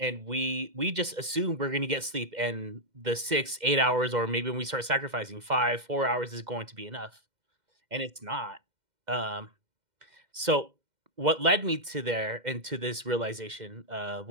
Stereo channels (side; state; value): left; late; 2.1 ms